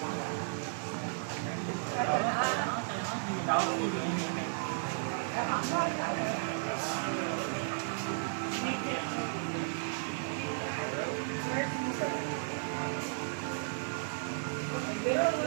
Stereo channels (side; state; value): left; silent; digital silence